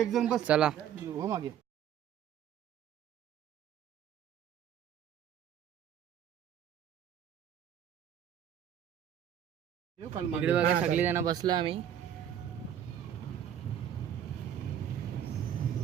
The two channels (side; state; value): left; quieter; 9.7 dB